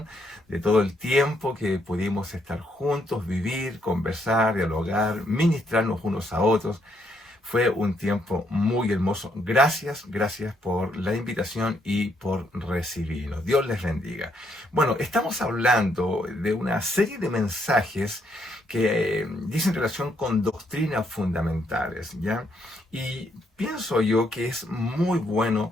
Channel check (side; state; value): both; normal; correlation 0.74